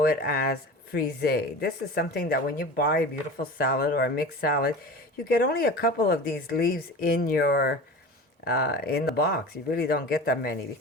it as frisee. This is something that when you buy a beautiful salad or a mixed salad, you get only a couple of these leaves in your in the box. You really don't get that many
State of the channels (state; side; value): normal; both; correlation 0.34